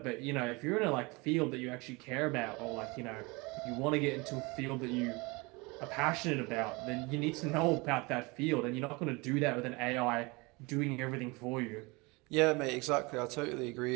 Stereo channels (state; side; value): quieter; left; 26.0 dB